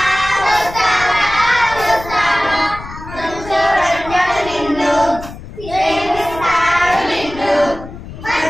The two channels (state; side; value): noise; left; rumble, 13 dB below the sound